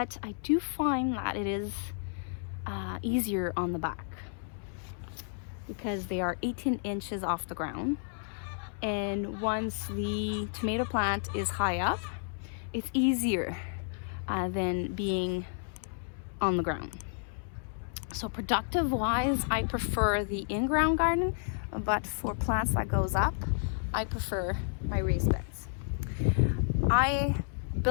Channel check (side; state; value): right; silent; 57 dB below the other